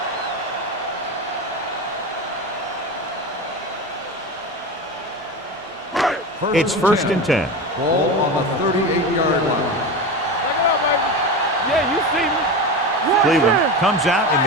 It's first and 10. Ball on the 38-yard line. Check it out, baby. Yeah, you see me. Cleveland comes out in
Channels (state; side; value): normal; both; correlation 0.24